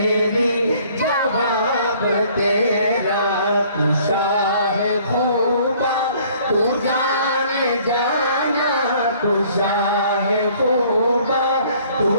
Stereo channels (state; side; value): inverted; both; correlation -0.57